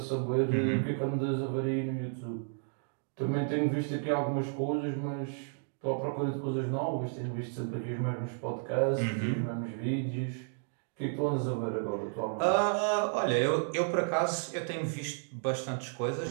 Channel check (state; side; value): silent; left; digital silence